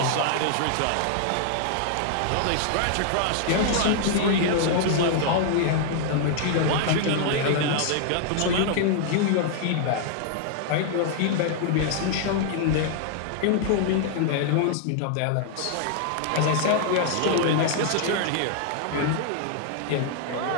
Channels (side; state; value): both; different; correlation 0.00